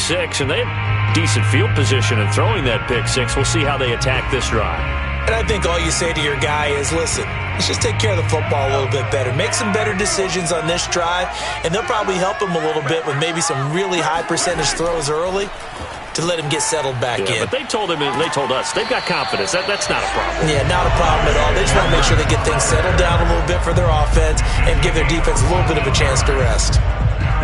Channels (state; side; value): identical; both; correlation 1.00